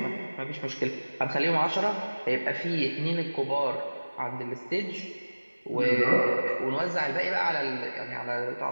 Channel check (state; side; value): inverted; both; correlation -1.00